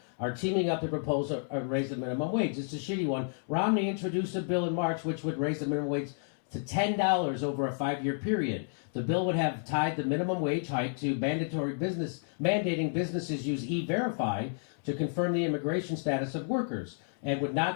are teaming up to propose a raise the minimum wage. It's a shitty one. Romney introduced a bill in March which would raise the minimum wage to $10 over a 5-year period. The bill would have tied the minimum wage hike to mandating businesses use E-Verify to confirm the immigration status of workers, and would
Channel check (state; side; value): silent; right; digital silence